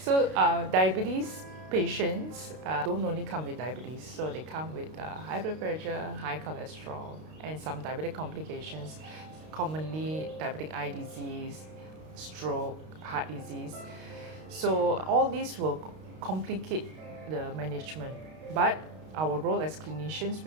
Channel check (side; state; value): left; late; 32 ms